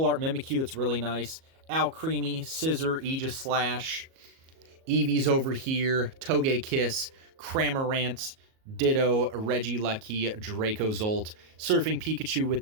art Mimikyu. That's really nice. Alcremie, Scissor, Aegis Slash. Eevee's over here. Togekiss, Cramorant, Ditto, Regieleki, Dracozolt, Surfing Pikachu with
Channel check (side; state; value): left; late; 37 ms